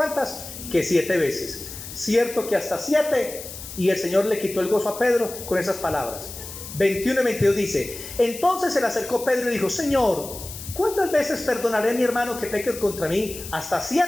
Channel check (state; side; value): noise; left; hiss, 12 dB below the sound